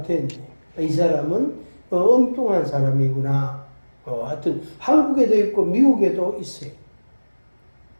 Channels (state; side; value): inverted; both; correlation -1.00